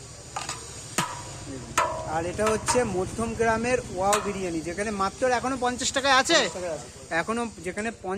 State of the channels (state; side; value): identical; both; correlation 1.00